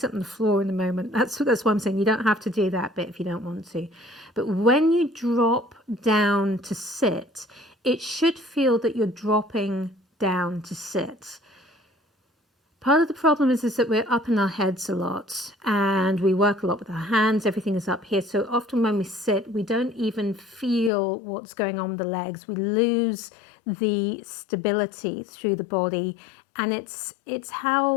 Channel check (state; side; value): drops out; right; at 20.9 s